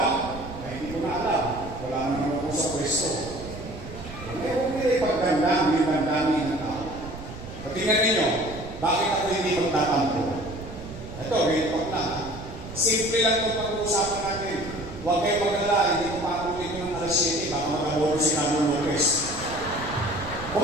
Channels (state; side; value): noise; right; rumble, 12 dB below the sound